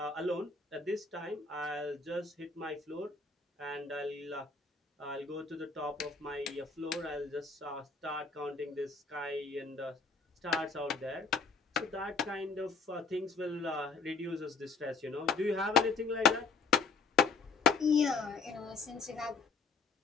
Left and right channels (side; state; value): right; quieter; 4.6 dB